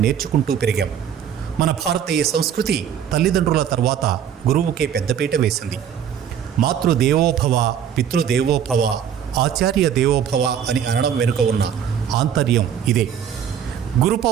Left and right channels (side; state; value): left; quieter; 8.8 dB